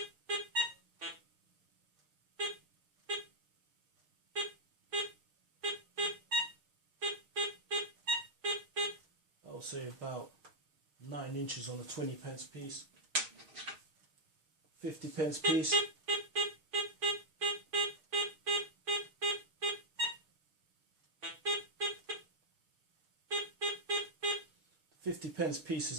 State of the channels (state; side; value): late; left; 6.4 ms